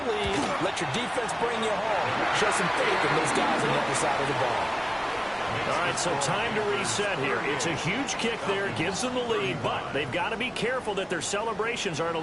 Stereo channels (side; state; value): both; identical; correlation 1.00